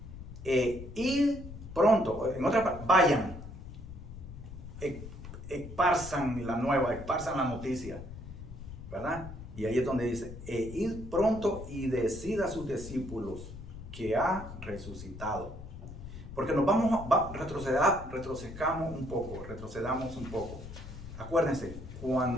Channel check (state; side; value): noise; left; rumble, 12 dB below the sound